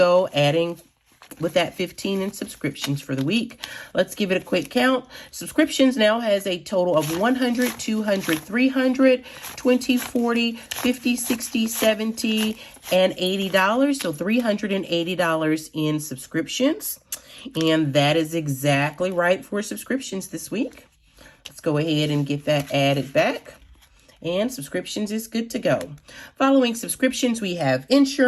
adding with that 15 in subscriptions for the week. Let's give it a quick count. Subscriptions now has a total of 100, 200, 300, 20, 40, 50, 60, 70, and $80. So $380 in subscriptions. And that is exactly right for subscriptions this week. Let's go ahead and get that added back. And subscriptions is good to go. Following subscriptions, we have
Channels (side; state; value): both; identical; correlation 1.00